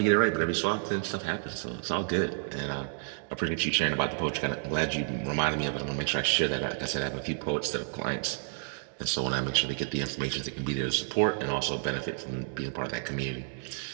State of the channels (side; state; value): left; silent; digital silence